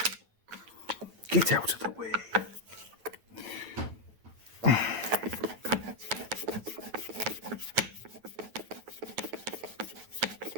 Get out of the way.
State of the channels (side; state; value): left; late; 9.1 ms